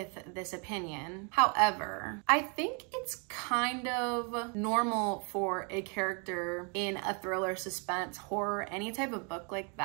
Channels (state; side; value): quieter; left; 35.3 dB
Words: this opinion. However, I think it's kind of normal for a character in a thriller, suspense, horror, any type of book like